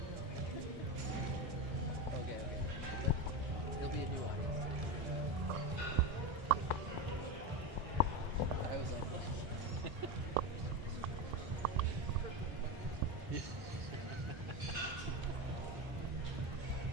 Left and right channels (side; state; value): left; late; 1.6 ms